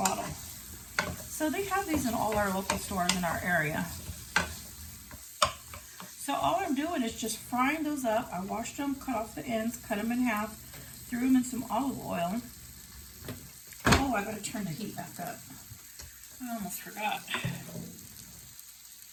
So they have these in all our local stores in our area. So all I'm doing is just frying those up. I washed them, cut off the ends, cut them in half, threw them in some olive oil. Oh, I gotta turn the heat back up. I almost forgot.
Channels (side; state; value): both; identical; correlation 1.00